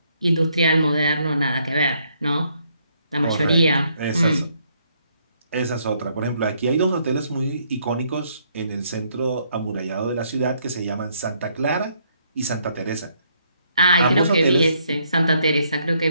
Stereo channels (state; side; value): inverted; both; correlation -0.71